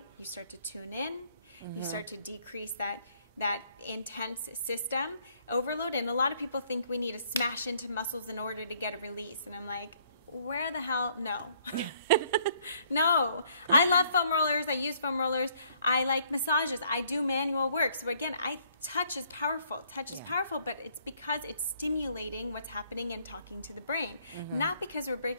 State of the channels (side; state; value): both; inverted; correlation -0.65